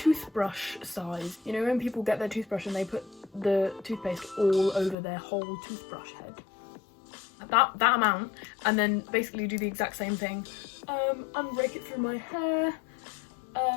size. You know, when people get their toothbrush and they put the toothpaste all over their whole toothbrush head. That amount, and then basically do the exact same thing. And rake it through my hair.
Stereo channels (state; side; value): drops out; right; at 5.0 s